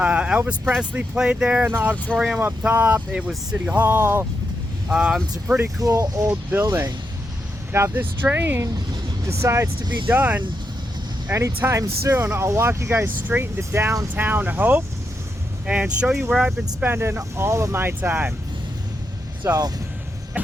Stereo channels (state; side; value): normal; both; correlation 0.84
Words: Presley played there in the auditorium up top. It was City Hall. It's a pretty cool old building. Now, if this train decides to be done anytime soon, I'll walk you guys straight into downtown Hope and show you where I've been spending all of my time. So,